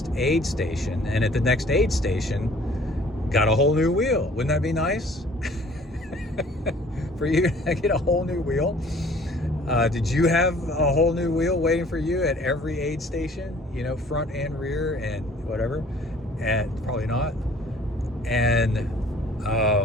aid station. And at the next aid station, got a whole new wheel. Wouldn't that be nice? For you to get a whole new wheel? Did you have a whole new wheel waiting for you at every aid station? You know, front and rear and whatever? And probably not. And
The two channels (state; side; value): normal; both; correlation 0.53